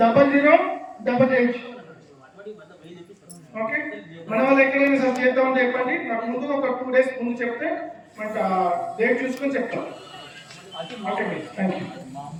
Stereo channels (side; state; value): both; identical; correlation 1.00